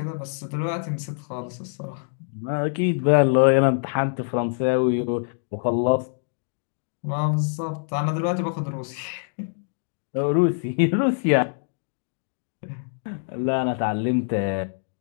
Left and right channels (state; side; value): silent; right; digital silence